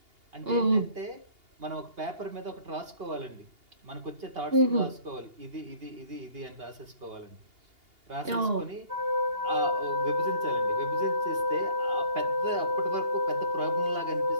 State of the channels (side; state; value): left; late; 2.8 ms